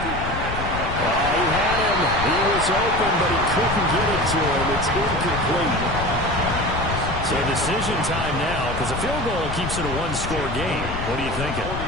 Oh, he had it. him. He was open, but he couldn't get it to him. It's incomplete. So decision time now, because a field goal keeps it a one-score game. What are you thinking?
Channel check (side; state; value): left; noise; rumble, 6 dB below the sound